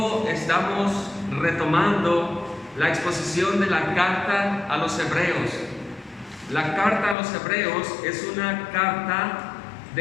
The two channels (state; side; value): drops out; right; at 7.2 s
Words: estamos retomando la exposición de la carta a los Hebreos. La carta a los Hebreos es una carta